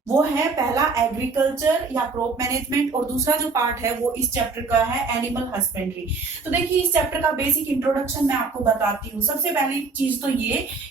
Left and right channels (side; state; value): left; quieter; 4.3 dB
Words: वो है पहला एग्रीकल्चर या क्रॉप मैनेजमेंट और दूसरा जो पार्ट है वो इस चैप्टर का है एनिमल हस्बेंड्री। तो देखिए इस चैप्टर का बेसिक इंट्रोडक्शन मैं आपको बताती हूँ। सबसे पहली चीज तो ये